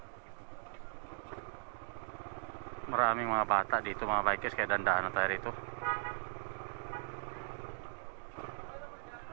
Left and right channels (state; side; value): silent; left; digital silence